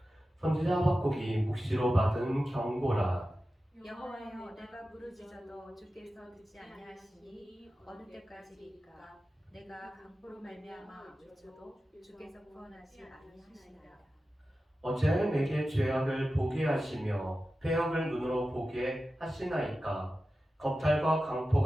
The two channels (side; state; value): both; normal; correlation 0.93